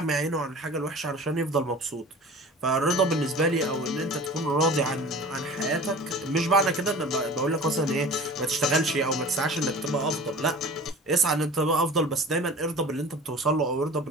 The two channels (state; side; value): normal; both; correlation 0.41